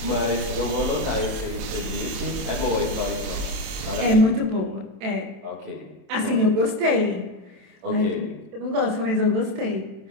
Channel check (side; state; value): left; late; 27 ms